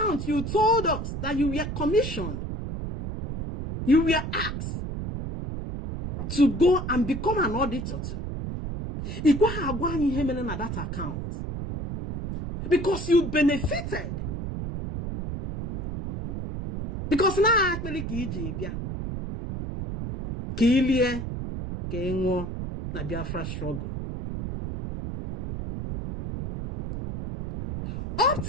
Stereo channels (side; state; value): right; noise; rumble, 5 dB below the sound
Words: you told us that you were commissioned, you were asked to go and become an auditor to. That account because you benefited. Because now actually Kilie Kengo na Biafra struggle. Up